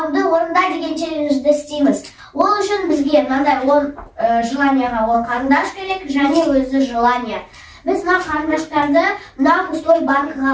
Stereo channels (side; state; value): both; identical; correlation 1.00